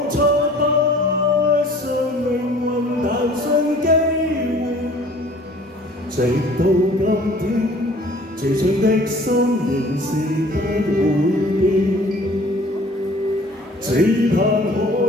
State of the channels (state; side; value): normal; both; correlation 0.51